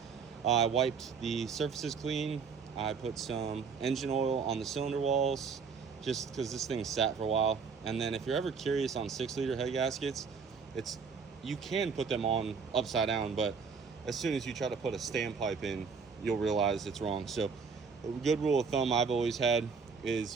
I wiped the surfaces clean. I put some engine oil on the cylinder walls just because this thing sat for a while. And then if you're ever curious on 6-liter head gaskets, you can put them on upside down, but as soon as you try to put a standpipe in, you'll realize it's wrong. So a good rule of thumb I've always had is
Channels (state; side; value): quieter; left; 5.6 dB